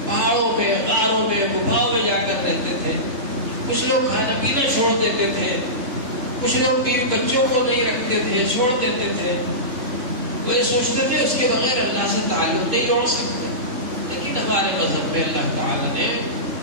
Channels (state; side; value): late; left; 3.7 ms